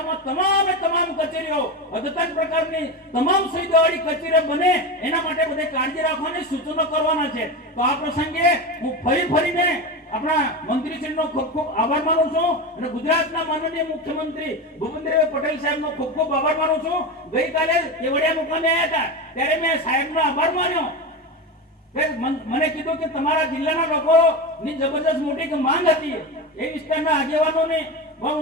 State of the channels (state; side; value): normal; both; correlation 0.20